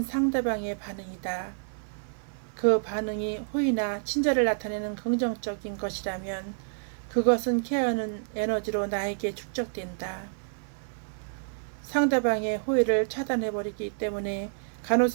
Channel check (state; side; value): silent; left; 59 dB below the other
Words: 상대방의 반응이다. 그 반응이 호의나 친절을 나타내는 긍정적인 것이라면 그것은 케어하는 에너지로 나에게 축적된다. 상대방의 호의를 차단해버리기 때문에